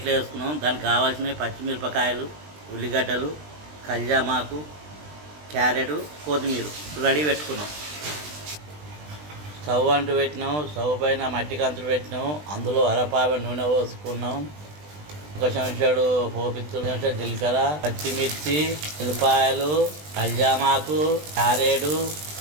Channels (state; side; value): late; left; 20 ms